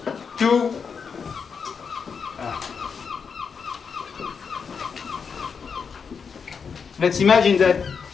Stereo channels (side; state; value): right; quieter; 6.0 dB